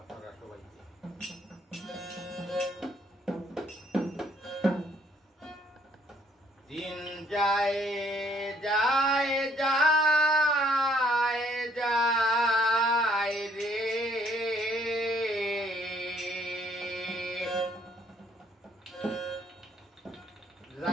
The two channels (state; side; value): normal; both; correlation 0.65